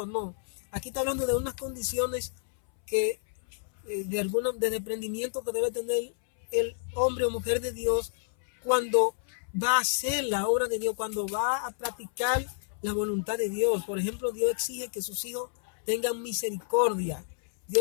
no. Aquí está hablando de unas condiciones que de desprendimiento que debe tener el hombre o mujer de Dios cuando va a hacer la obra de Dios, cuando va a practicar la voluntad de Dios. Por ejemplo, Dios exige que sus hijos tengan misericordia.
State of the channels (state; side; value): silent; right; 58 dB below the other